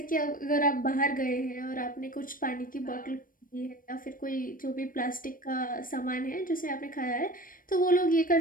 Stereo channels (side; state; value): right; late; 0.40 ms